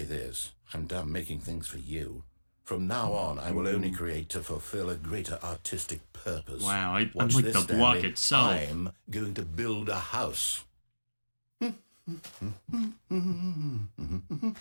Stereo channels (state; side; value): inverted; both; correlation -1.00